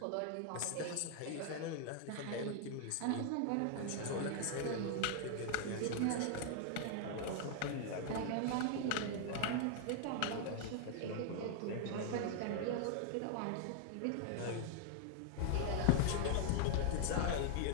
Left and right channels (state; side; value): different; both; correlation 0.00